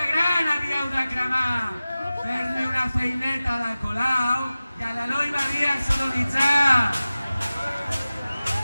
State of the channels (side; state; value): both; inverted; correlation -0.96